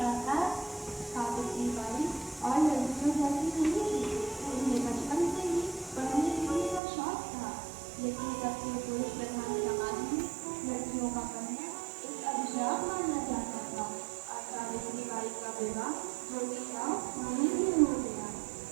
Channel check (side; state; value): left; drops out; at 6.8 s